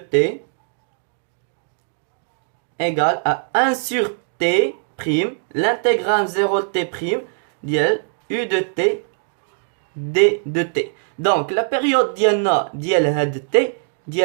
T égale à 1 sur T prime l'intégrale 0 T prime dial U de T D de T donc la période ديالنا ديال هاد T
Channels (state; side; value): silent; left; digital silence